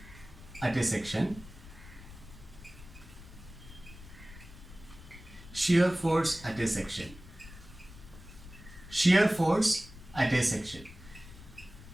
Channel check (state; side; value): noise; left; rumble, 17 dB below the sound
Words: at a section, shear force at a section. Shear force at a section.